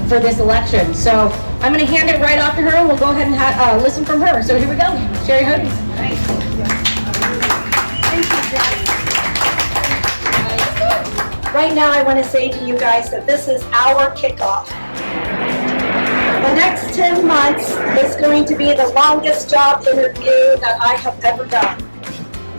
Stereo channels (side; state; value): both; inverted; correlation -1.00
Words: for this election. So I'm going to hand it right off to her, and we'll go ahead and listen from her. So here we go, Sherri Hodies. Thank you, Jess. Right now, I want to say to you guys that this is our kickoff. The next 10 months is going to be the longest job interview that I have ever done.